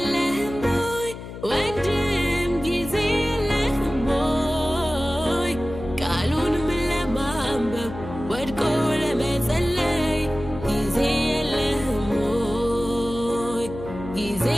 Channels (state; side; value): noise; left; hum, 11 dB below the sound